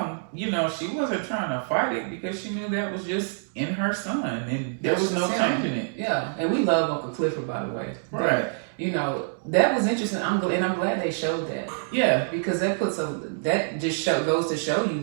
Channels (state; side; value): silent; left; digital silence